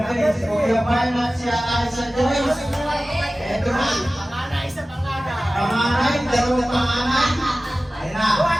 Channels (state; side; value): normal; both; correlation 0.96